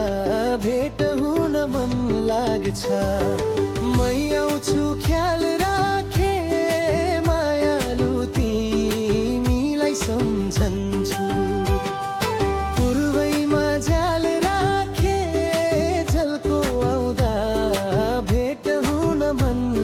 भेट हुन मन लाग्छ। मै आउँछु ख्याल राखे मायालु तिमीलाई सम्झन्छु। पूर्वैमा झ्याल राखे झल्को आउँदा भेट हुन मन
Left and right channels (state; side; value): identical; both; correlation 1.00